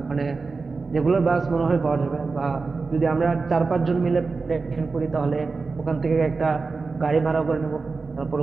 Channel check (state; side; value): quieter; left; 4.2 dB